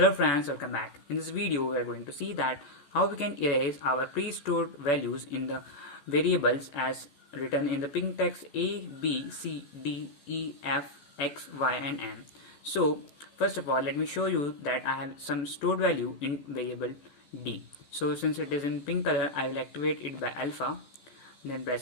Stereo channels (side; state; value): right; late; 14 ms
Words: friends, welcome back. In this video we are going to see that how we can erase our pre-stored values in the variables as written in the pink text a, b, c, d, e, f, x, y and m. So first of all let me show you that I have some stored value in variable d. So since it is in pink color, I will activate it by alpha, then